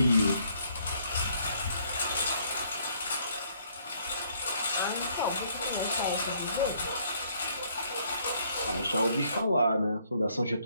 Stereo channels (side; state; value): both; inverted; correlation -0.66